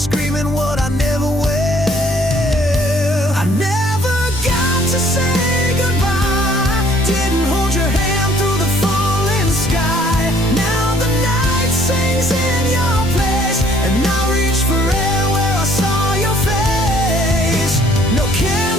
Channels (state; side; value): normal; both; correlation 0.60